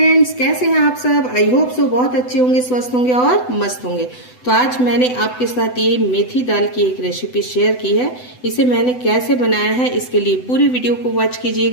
कैसे हैं आप सब। आई होप सो बहुत अच्छे होंगे, स्वस्थ होंगे और मस्त होंगे। तो आज मैंने आपके साथ ये मेथी दाल की एक रेसिपी शेयर की है। इसे मैंने कैसे बनाया है, इसके लिए पूरी वीडियो को वॉच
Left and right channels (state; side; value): late; right; 8.0 ms